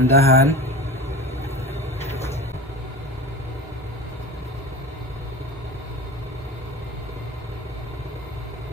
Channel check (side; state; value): both; normal; correlation 0.32